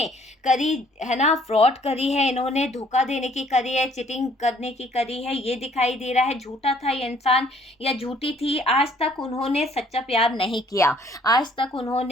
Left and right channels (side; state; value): both; normal; correlation 0.61